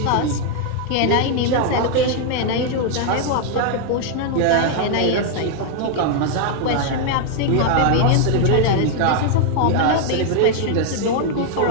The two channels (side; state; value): both; different; correlation 0.00